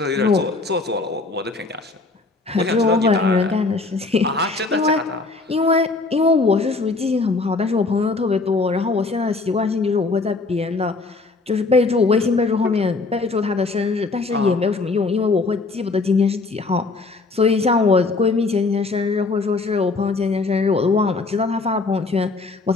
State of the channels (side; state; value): right; quieter; 3.7 dB